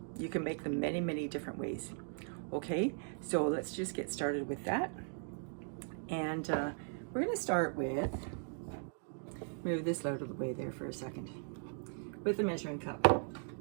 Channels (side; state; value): left; silent; 52 dB below the other